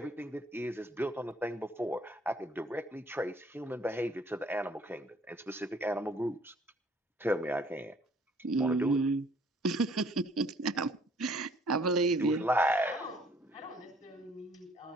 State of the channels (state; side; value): normal; both; correlation 0.60